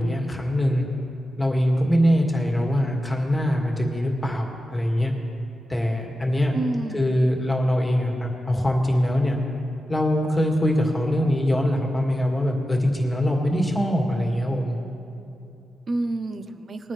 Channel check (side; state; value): both; normal; correlation 0.92